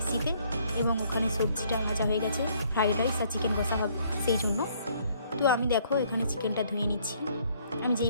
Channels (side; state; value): both; inverted; correlation -0.64